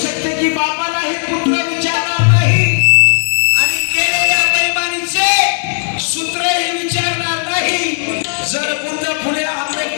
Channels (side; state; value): right; silent; digital silence